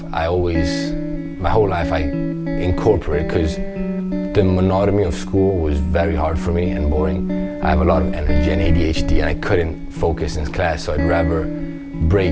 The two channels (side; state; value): both; identical; correlation 1.00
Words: I incorporated, because the monotony of school was very hard for me and boring. I have a lot of energy and ADHD, and I couldn't focus in class, so I'd rather